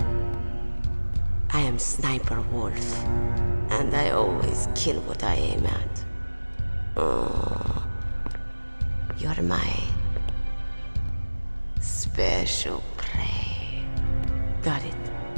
I am Sniper Wolf, and I always kill what I aim at. Oh, you're my special prey. Got it?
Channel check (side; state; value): both; inverted; correlation -1.00